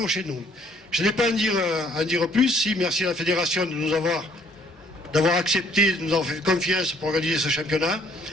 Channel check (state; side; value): normal; both; correlation 0.62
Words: chez nous. Je n'ai pas à en dire plus, si merci à la fédération d'avoir accepté, de nous avoir fait confiance pour organiser ce championnat.